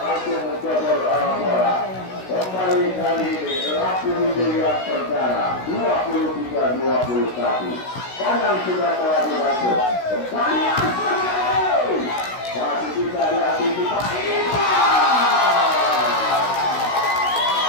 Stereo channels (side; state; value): right; late; 16 ms